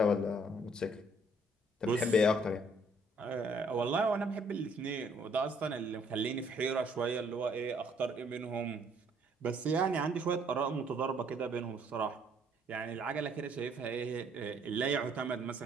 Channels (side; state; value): both; normal; correlation 0.64